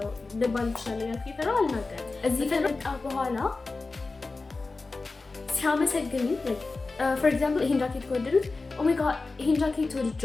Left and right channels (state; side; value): quieter; right; 3.7 dB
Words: ልባል እችላለሁ ያልኩ ይፈራል አልናገርም። እዚህ ከመጣ በኋላ ሲያመሰግኝ like for example ይሄን ጃኬት ከወደዱት oh my god ይሄን ጃኬት